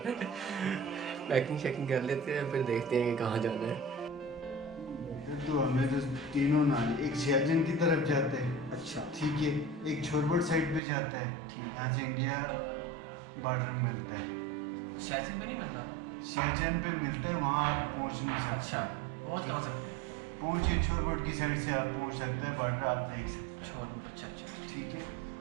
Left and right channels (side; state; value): left; drops out; at 10.8 s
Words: है। पैकिंग शैकिंग कर लेते हैं, फिर देखते हैं कि कहाँ जाना है। तो हमें तो तीनों नाले, एक सियाचिन की तरफ जाते हैं, अच्छा ठीक है, एक छोरबट साइड पे जाता है, ठीक है। यहाँ से इंडिया बॉर्डर मिलता है। सियाचिन पे नहीं मिलना? सियाचिन पे मिलता है, वहाँ आप पहुँच नहीं सकते। अच्छा, पहुँच कहाँ सकते हैं? पहुँचिए छोरबट की साइड से आप पहुँच सकते हैं, बॉर्डर आप देख सकते हैं। छोरबट, अच्छा अच्छा, ठीक है।